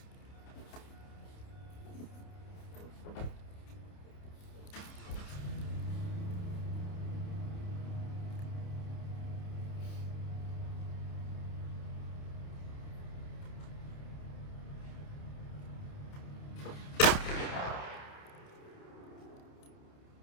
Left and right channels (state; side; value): late; right; 29 ms